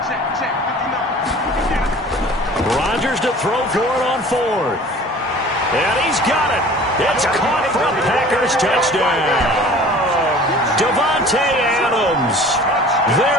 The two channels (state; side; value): normal; both; correlation 0.45